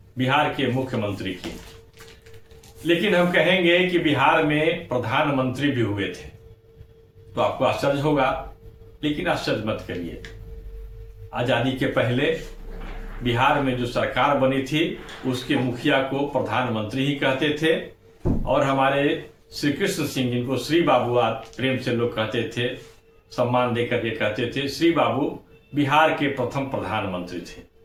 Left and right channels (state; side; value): identical; both; correlation 1.00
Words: बिहार के मुख्यमंत्री की। लेकिन हम कहेंगे कि बिहार में प्रधानमंत्री भी हुए थे तो आपको आश्चर्य होगा, लेकिन आश्चर्य मत करिए। आजादी के पहले बिहार में जो सरकार बनी थी उसके मुखिया को प्रधानमंत्री ही कहते थे, और हमारे श्री कृष्ण सिंह, जिनको श्री बाबू प्रेम से लोग कहते थे, सम्मान देकर के कहते थे, श्री बाबू बिहार के प्रथम प्रधानमंत्री थे।